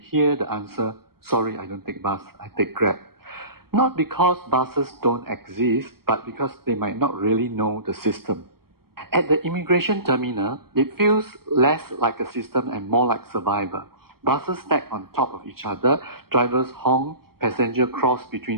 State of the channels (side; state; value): left; late; 0.94 ms